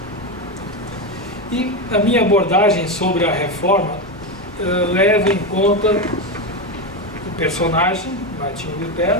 E a minha abordagem sobre a reforma leva em conta o personagem, Martinho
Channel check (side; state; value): both; normal; correlation 0.13